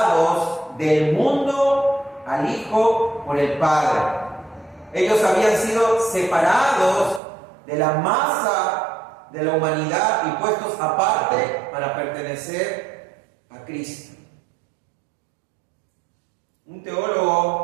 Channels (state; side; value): drops out; left; at 7.2 s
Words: del mundo al Hijo por el Padre. Ellos habían sido separados de la masa de la humanidad y puestos aparte para pertenecer a Cristo. Un